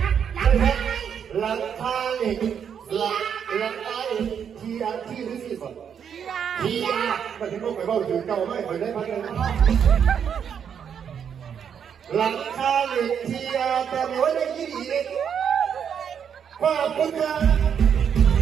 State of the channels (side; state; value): left; quieter; 7.8 dB